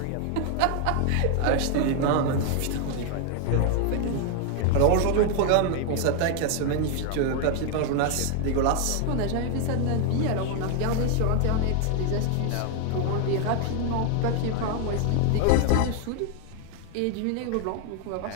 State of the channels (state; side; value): different; both; correlation 0.00